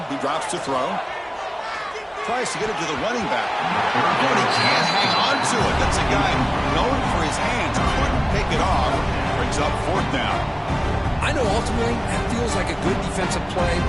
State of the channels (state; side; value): identical; both; correlation 1.00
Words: he drops to throw. Tries to get it to the running back. But he can't hang on to it. That's a guy known for his hands. Couldn't pick it off. Brings up 4th down. I know ultimately that feels like a good defensive play,